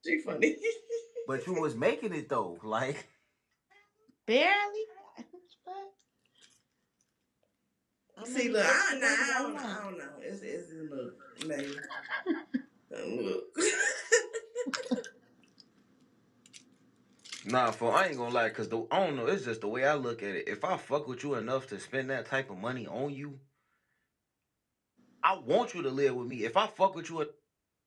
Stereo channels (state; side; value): identical; both; correlation 1.00